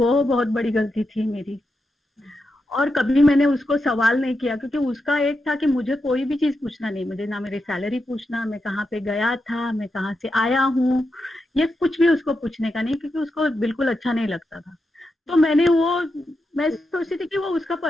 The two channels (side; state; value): both; normal; correlation 0.87